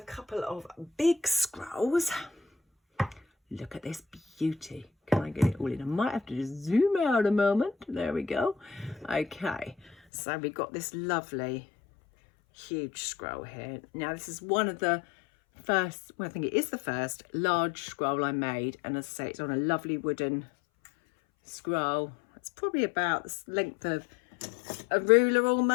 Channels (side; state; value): right; drops out; at 10.0 s